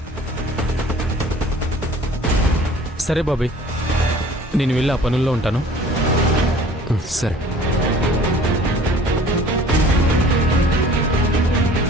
సరే బాబీ, నేను వెళ్ళి ఆ పనుల్లో ఉంటాను. సరే.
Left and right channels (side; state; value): both; normal; correlation 0.49